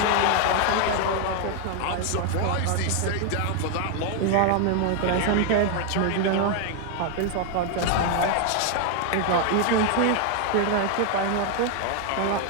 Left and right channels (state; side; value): different; both; correlation 0.00